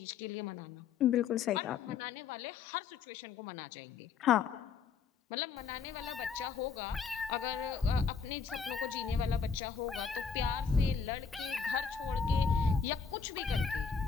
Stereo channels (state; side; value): quieter; right; 6.0 dB